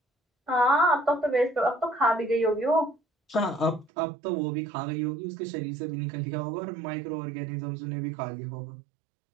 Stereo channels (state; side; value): drops out; left; at 3.9 s